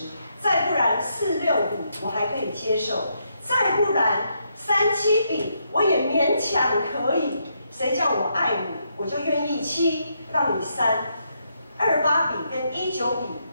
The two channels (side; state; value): both; inverted; correlation -0.78